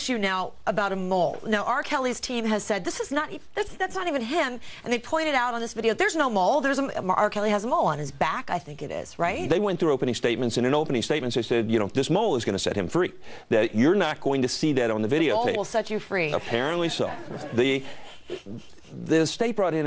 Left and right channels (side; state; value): both; identical; correlation 1.00